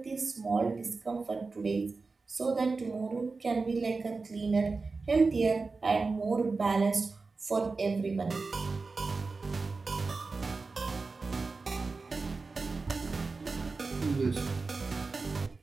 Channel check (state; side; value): quieter; left; 4.1 dB